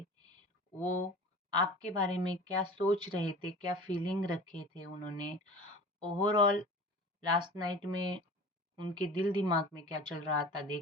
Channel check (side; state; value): both; normal; correlation 0.38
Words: वो आपके बारे में क्या सोच रहे थे, क्या फीलिंग रखे थे उन्होंने, ओवरऑल लास्ट नाइट में उनके दिल दिमाग में क्या चल रहा था